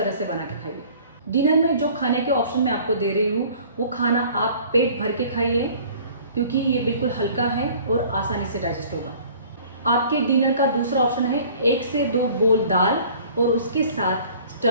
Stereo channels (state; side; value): inverted; both; correlation -0.50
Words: से बना के खाइए। डिनर में जो खाने के ऑप्शन मैं आपको दे रही हूँ वो खाना आप पेट भर के खाइए, क्योंकि ये बिल्कुल हल्का है और आसानी से डाइजेस्ट होगा। आपके डिनर का दूसरा ऑप्शन है 1 से 2 बोल दाल और उसके साथ